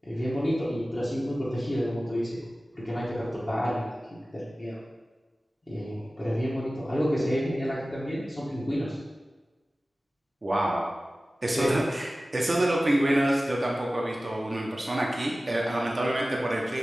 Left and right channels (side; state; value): both; normal; correlation 0.96